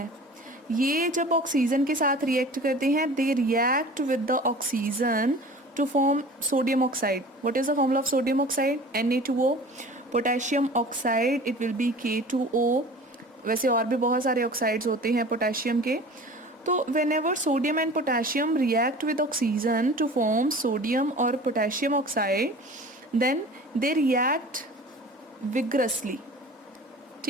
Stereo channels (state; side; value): normal; both; correlation 0.41